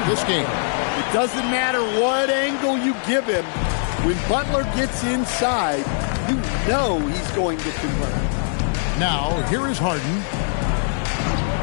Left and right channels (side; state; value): right; silent; digital silence